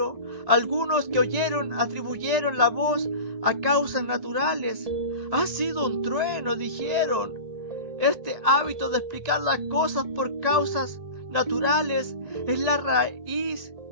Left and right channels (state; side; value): late; left; 1.9 ms